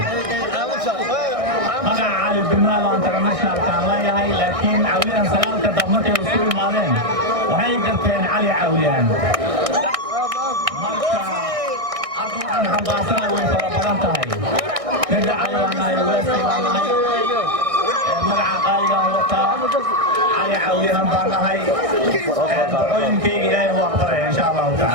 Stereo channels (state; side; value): late; left; 1.6 ms